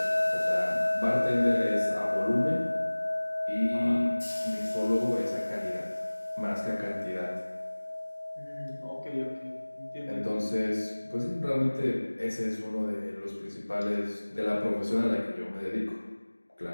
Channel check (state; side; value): inverted; both; correlation -1.00